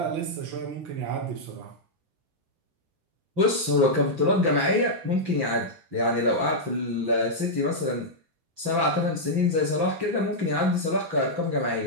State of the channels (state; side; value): late; left; 6.0 ms